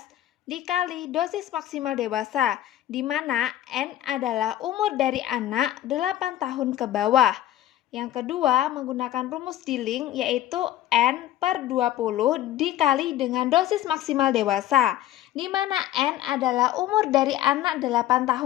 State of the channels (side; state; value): right; quieter; 13.2 dB